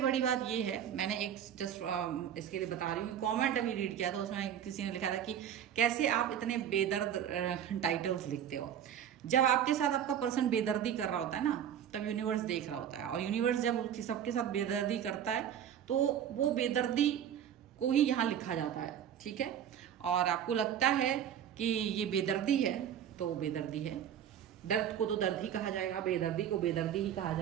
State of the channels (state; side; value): quieter; left; 9.6 dB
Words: बड़ी बात ये है, मैंने एक जस्ट इसके लिए बता रही हूँ, कॉमेंट अभी रीड किया था, उसमें किसी ने लिखा था कि कैसे आप इतने बेदर्द टाइटल्स लिखते हो। जब आपके साथ आपका पर्सन बेदर्दी कर रहा होता है ना, तब यूनिवर्स देख रहा होता है, और यूनिवर्स जब सबके साथ बेदर्दी करता है तो वो बेदर्दी को ही यहाँ लिखा जाता है, ठीक है। और आपको लगता है कि ये बेदर्दी है तो वो बेदर्दी है। दर्द को तो दर्द ही कहा जाएगा, बेदर्दी को बेदर्दी ही कहा